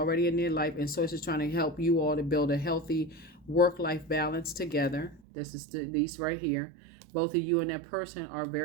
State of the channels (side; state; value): left; drops out; at 5.2 s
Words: in their life, and source is trying to help you all to build a healthy work-life balance together. This is these right here. Both of you and that person are